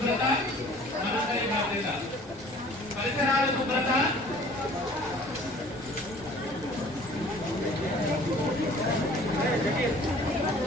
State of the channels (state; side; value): noise; right; rumble, 22 dB below the sound